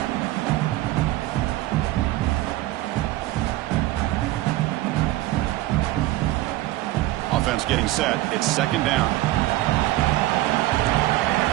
Offense getting set. It's second down.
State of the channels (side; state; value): left; quieter; 16.9 dB